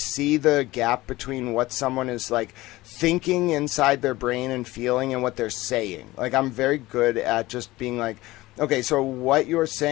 the gap between what someone is like thinking inside their brain and feeling and what they're saying. Like, I'm very good at just being like, okay, so what you're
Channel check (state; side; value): quieter; right; 18.7 dB